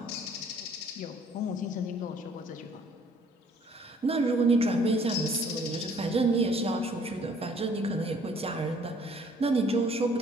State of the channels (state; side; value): normal; both; correlation 0.59